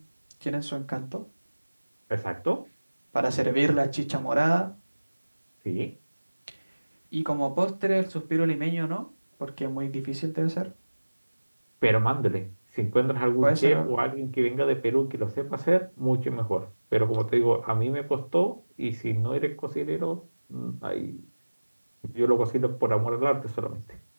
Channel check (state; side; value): inverted; both; correlation -1.00